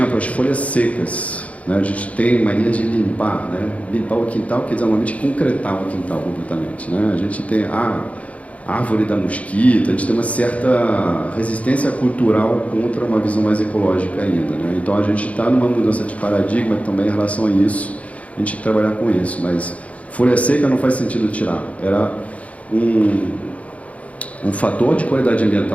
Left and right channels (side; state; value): right; late; 0.066 ms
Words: as folhas secas. A gente tem mania de limpar, limpar o quintal, quer dizer, normalmente concretar o quintal completamente. A gente tem a árvore da mosquita, a gente tem uma certa resistência cultural contra uma visão mais ecológica ainda. Então a gente está numa mudança de paradigma também em relação a isso, a gente tem que trabalhar com isso, mas folha seca não faz sentido tirar. Era um fator de qualidade